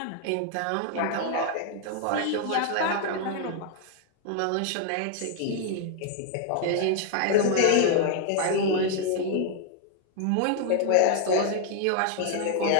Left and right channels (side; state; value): both; different; correlation 0.00